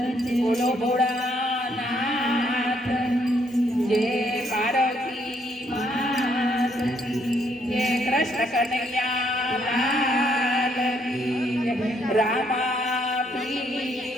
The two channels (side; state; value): both; normal; correlation 0.71